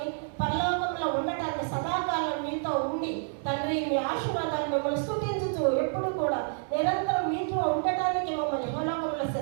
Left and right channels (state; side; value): silent; left; 59 dB below the other